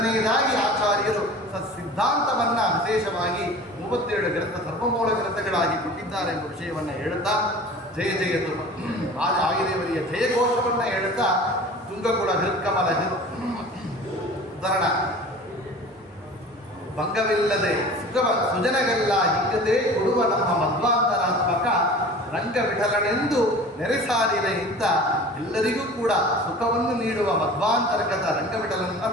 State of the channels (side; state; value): both; normal; correlation 0.40